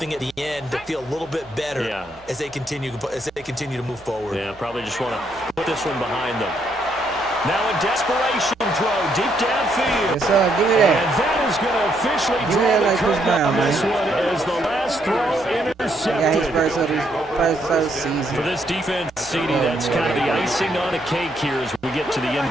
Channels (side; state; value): both; normal; correlation 0.74